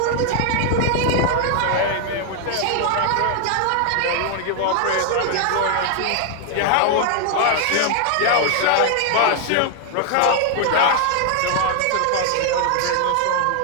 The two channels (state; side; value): different; both; correlation 0.00